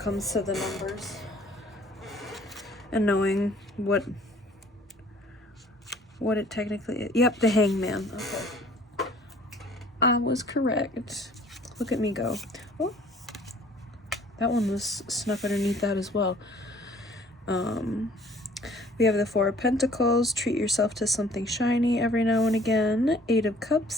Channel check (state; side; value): normal; both; correlation 0.54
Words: to the numbers and knowing what it technically is. Yep, the Hangman. Okay. I was correct. Look at me go. Oh, that one was snuck underneath that as well. We have the 4 of Pentacles. Treat yourself to something shiny every now and again. 8 of